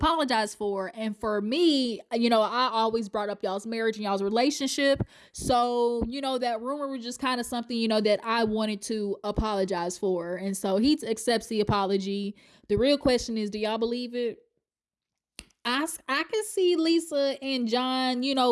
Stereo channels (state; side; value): identical; both; correlation 1.00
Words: for. And for me, I always brought up y'all's marriage and y'all's relationship. So, that rumor was just kind of something, that I wanted to apologize for. And so he accepts the apology. The real question is, do y'all believe it? I can see Lisa and John,